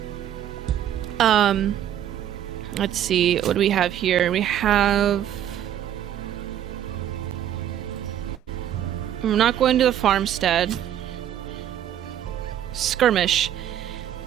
Let's see, what do we have here? We have... I'm not going to the farmstead. Skirmish.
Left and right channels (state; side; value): quieter; left; 10.7 dB